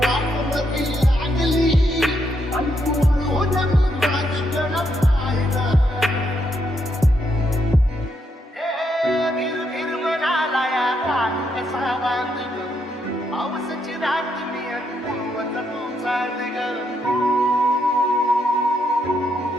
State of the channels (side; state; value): both; normal; correlation 0.78